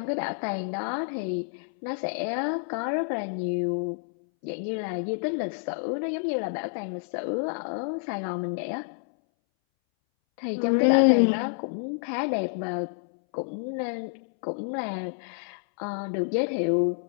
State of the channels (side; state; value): right; silent; 59 dB below the other